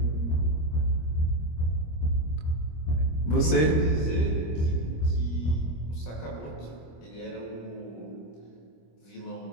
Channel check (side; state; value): right; late; 25 ms